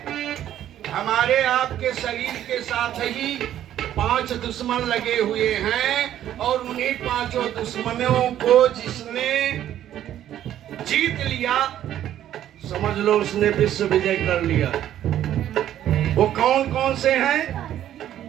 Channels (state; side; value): quieter; left; 11.6 dB